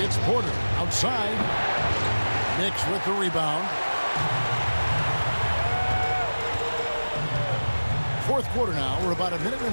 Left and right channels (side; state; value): both; inverted; correlation -1.00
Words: It's Porter outside. Knicks with the rebound. Fourth quarter now. We're about a minute and